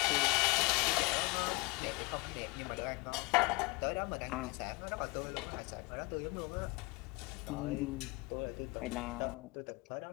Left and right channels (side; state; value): right; quieter; 26.7 dB